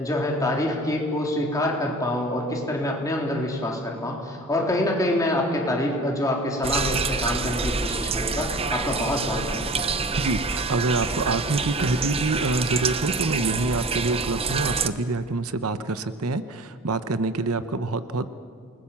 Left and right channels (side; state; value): both; normal; correlation 0.40